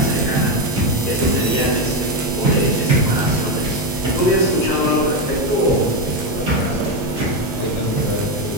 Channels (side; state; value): both; normal; correlation 0.10